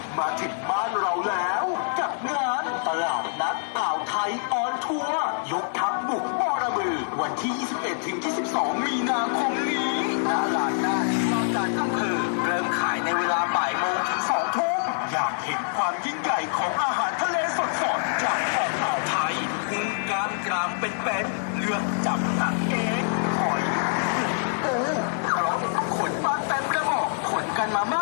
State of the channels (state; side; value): silent; right; digital silence